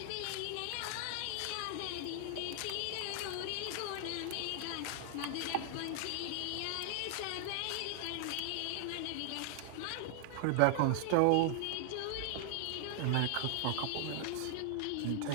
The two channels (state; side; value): different; both; correlation 0.00